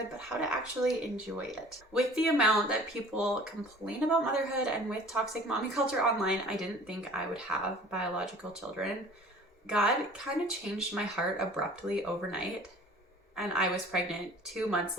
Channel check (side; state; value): both; normal; correlation 0.48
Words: but how to actually enjoy it. With the amount that people complain about motherhood and with toxic mommy culture online, I didn't think I would have biological children. God kind of changed my heart abruptly overnight and I was pregnant 2 months